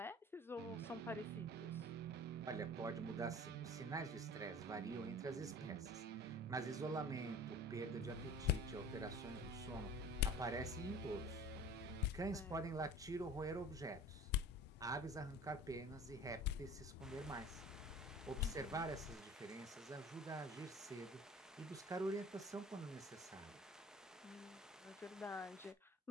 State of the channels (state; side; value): normal; both; correlation 0.42